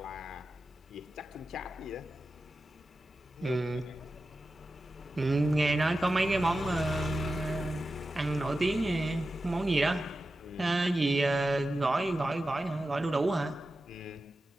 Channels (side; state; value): both; normal; correlation 0.93